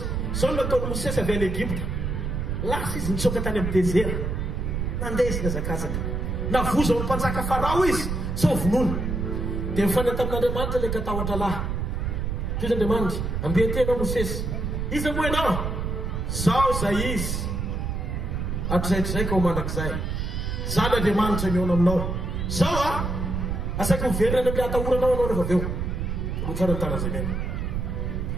zao nataony Mosesy avy any Egypta. Lasa izy nitsoka tany amin'ny désert nandeha izy nazakazaka navoza ao ny mpanjaka Farao izy sao vonoina dia mifanay tamin'Andriamanitra ilay katahotra lahy. Izy Andriamanitra ambetenao Mosesy. Izy moa ianao zao zay izy hatrizay ka ho mandrakizay. Zany Andriamanitra miona aminao. Zao asaiko miverina any amin'ny atahoranao anao rehefa avy eo. Tsara ny tanany zay mena.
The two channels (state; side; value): noise; right; rumble, 2 dB below the sound